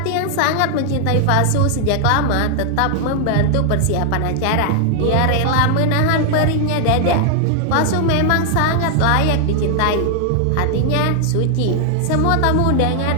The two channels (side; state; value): both; different; correlation 0.00